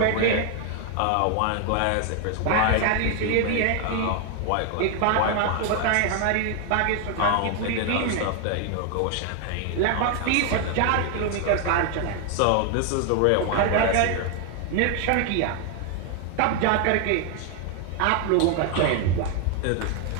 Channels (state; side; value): different; both; correlation 0.00